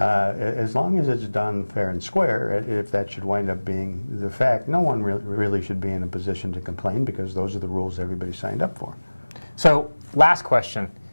long as it's done fair and square, if that should wind up being the fact, no one really should be in a position to complain, because those are the rules everybody signed up for. So, last question.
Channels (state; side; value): inverted; both; correlation -1.00